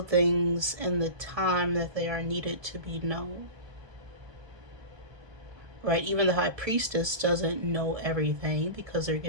things in the time that they are needed to be known. Right? Even the high priestess doesn't know everything because they're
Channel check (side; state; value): left; late; 1.2 ms